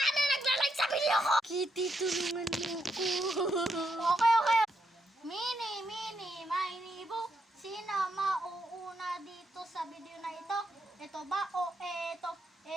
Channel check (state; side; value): normal; both; correlation 0.80